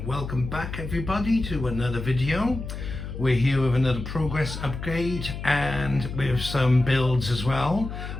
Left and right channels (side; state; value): left; noise; hum, 8 dB below the sound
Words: welcome back everybody to another video. We're here with another progress upgrade and with some builds as well,